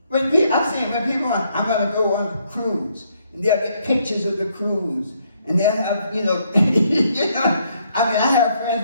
When people, I'm going to go on a cruise, and they'll get pictures of the cruise, and they'll have, you know, I have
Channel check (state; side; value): inverted; both; correlation -0.71